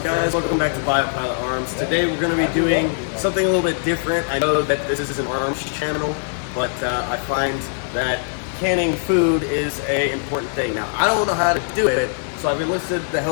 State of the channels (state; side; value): silent; right; digital silence